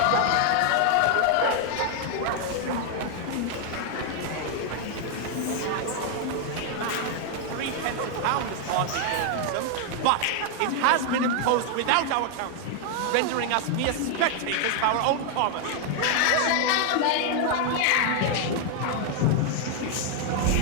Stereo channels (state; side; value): different; both; correlation 0.00